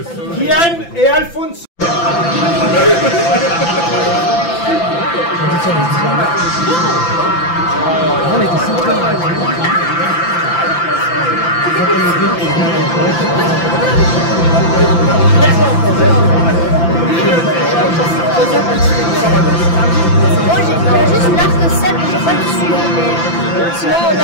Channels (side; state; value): right; late; 5.9 ms